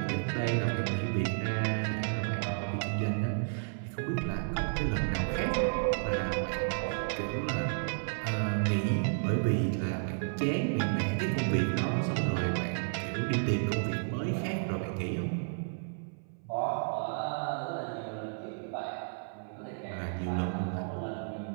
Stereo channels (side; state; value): left; silent; 56 dB below the other